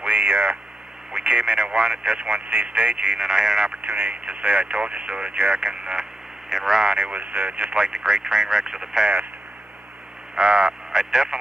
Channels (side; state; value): both; normal; correlation 0.87